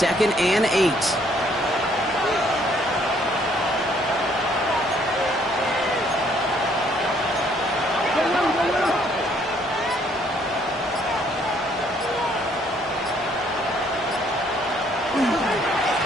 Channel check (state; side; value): normal; both; correlation 0.65